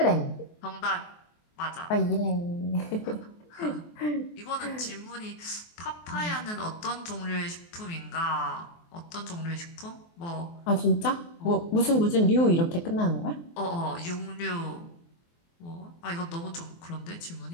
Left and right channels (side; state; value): right; late; 23 ms